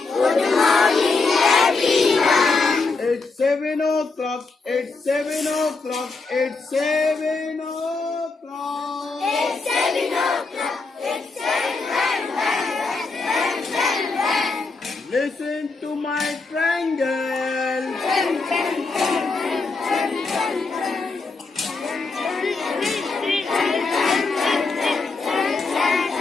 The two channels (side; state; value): right; quieter; 4.0 dB